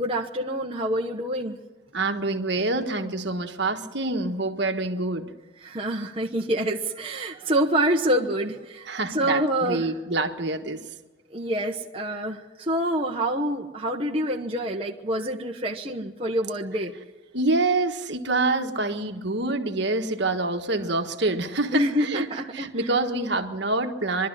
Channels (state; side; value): normal; both; correlation 0.14